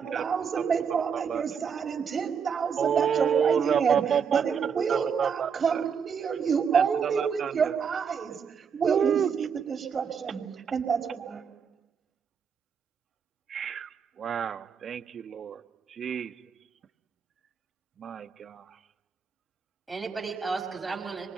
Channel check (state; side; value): quieter; left; 6.7 dB